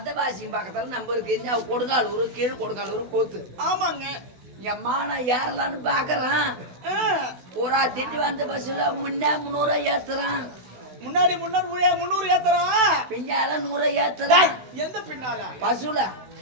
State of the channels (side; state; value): left; late; 16 ms